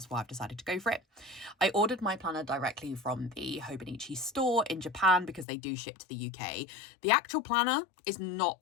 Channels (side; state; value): right; drops out; at 5.5 s